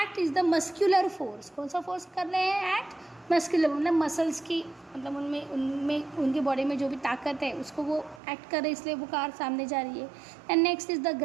is the muscular force. कौन सा फोर्स कर रहे हैं? एक्ट मस्कुलर, मतलब मसल्स की, मतलब उनमें उनके बॉडी में जो भी ताकत है उसको वो एक्ट कर रहे हैं, इसलिए वो कार सामने जा रही है। And next is the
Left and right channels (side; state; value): left; drops out; at 8.2 s